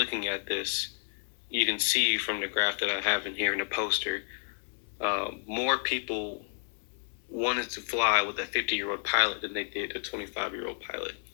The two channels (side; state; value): right; silent; 57 dB below the other